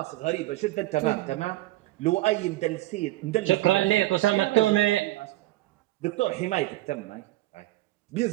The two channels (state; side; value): quieter; left; 17.9 dB